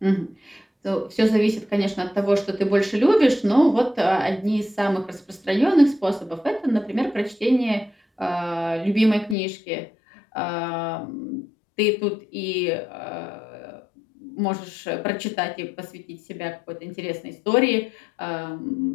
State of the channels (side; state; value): right; drops out; at 9.3 s